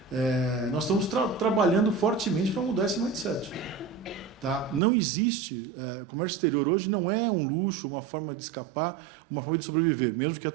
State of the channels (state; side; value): drops out; left; at 4.8 s